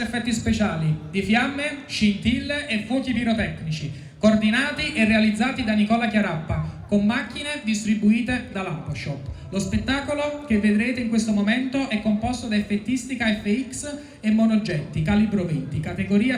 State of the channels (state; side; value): identical; both; correlation 1.00